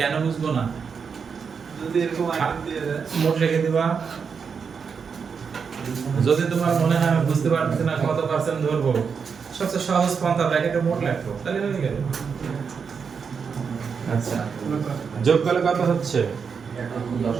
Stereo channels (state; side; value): quieter; left; 6.0 dB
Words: কেন বুঝবো না? যদি এরকম আইটেম দিয়ে দেয় মোট লিখে দিবা। যদি তোমার মনে হয় আমি বুঝতে পারছি না কত পার্সেন্ট ধরবো, সবচেয়ে সহজ পন্থা ব্র্যাকেটে মোট লিখো, তাহলে হয়ে গেল। আচ্ছা, যোগ করলে কত হচ্ছে?